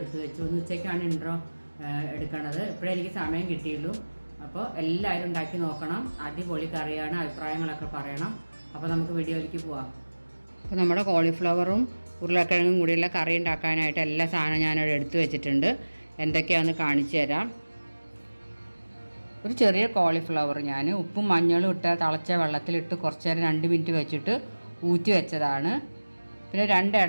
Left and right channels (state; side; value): inverted; both; correlation -1.00